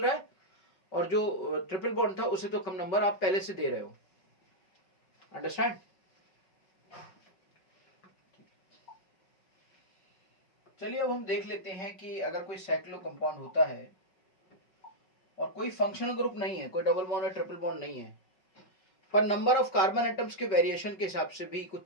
रहा है, और जो ट्रिपल बॉन्ड था उसे तो कम नंबर आप पहले से दे रहे हो। अंडरस्टैंड? चलिए अब हम देख लेते हैं कि अगर कोई साइक्लो कंपाउंड होता है और कोई फंक्शनल ग्रुप नहीं है, कोई डबल बॉन्ड या ट्रिपल बॉन्ड नहीं है, पर नंबर ऑफ कार्बन एटम्स के वेरिएशन के हिसाब से भी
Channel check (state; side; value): late; right; 5.4 ms